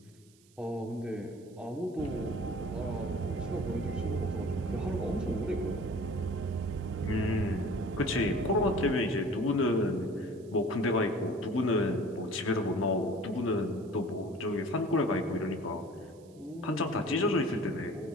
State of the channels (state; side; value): noise; right; hiss, 30 dB below the sound